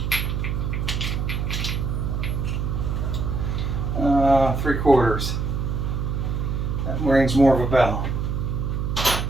Three-quarters. That rings more of a bell.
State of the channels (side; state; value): right; noise; hum, 1 dB below the sound